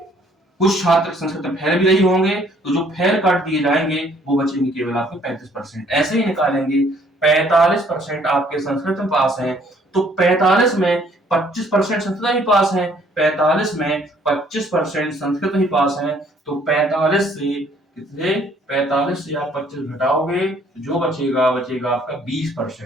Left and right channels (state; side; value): normal; both; correlation 0.62